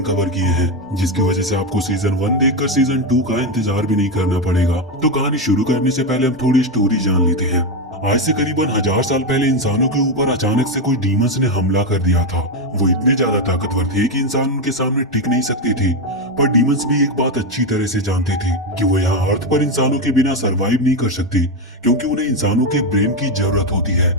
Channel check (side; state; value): both; normal; correlation 0.09